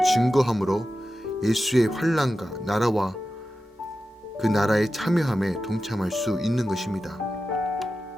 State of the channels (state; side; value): normal; both; correlation 0.93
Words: 증거함으로 예수의 환난과 나라와 그 나라의 참여함에 동참할 수 있는 것입니다.